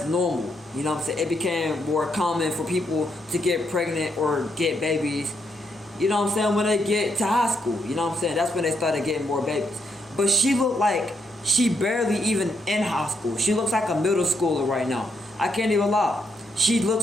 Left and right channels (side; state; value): both; normal; correlation 0.77